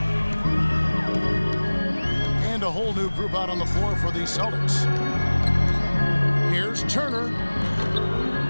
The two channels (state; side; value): inverted; both; correlation -1.00